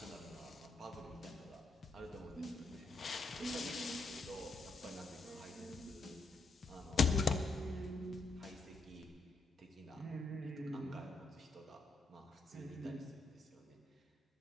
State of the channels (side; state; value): right; quieter; 3.3 dB